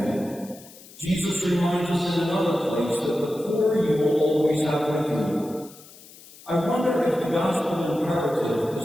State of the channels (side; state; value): left; noise; hiss, 21 dB below the sound